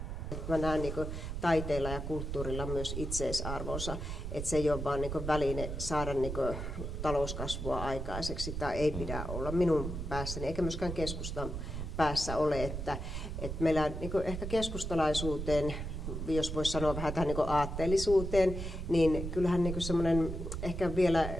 Mä näen niin taiteilla ja kulttuurilla myös itseisarvonsa, että se ei ole vain niin väline saada niin talouskasvua aikaiseksi, tai ei pidä olla minun päässäni, eikä myöskään keskustan päässä ole, että meillä niin ehkä keskustalaisuuteen, jos voisi sanoa vähän tähän niin aatteellisuuteen, niin kyllähän niin semmoinen ehkä vielä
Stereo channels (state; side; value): noise; right; rumble, 5 dB below the sound